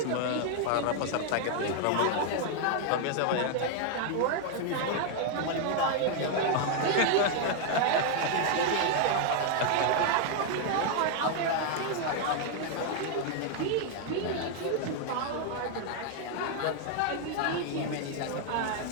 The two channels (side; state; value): both; different; correlation 0.00